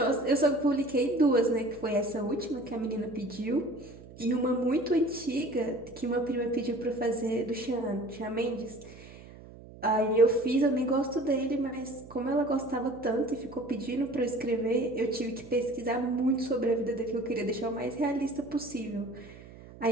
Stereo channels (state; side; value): noise; right; hum, 18 dB below the sound